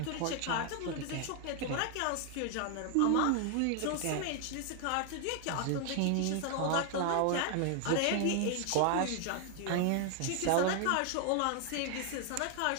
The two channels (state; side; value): different; both; correlation 0.00